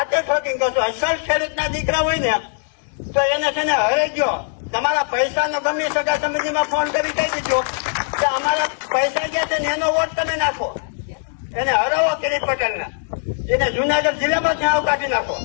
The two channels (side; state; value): right; silent; 65 dB below the other